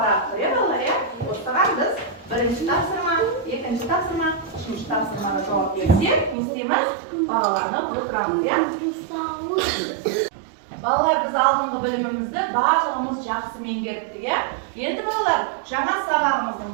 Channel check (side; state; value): left; drops out; at 6.4 s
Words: тұр, балалар, я? Осыған біз бірінші тапсырма, екінші тапсырма, үшінші тапсырмаға жауап берсек, не істейміз? Бағаланып отырамыз, я? Балалар, біз алдыңғы білімімізді барлығымыз жақсы меңгердік, я? Енді балалар, жаңа сабағымыздың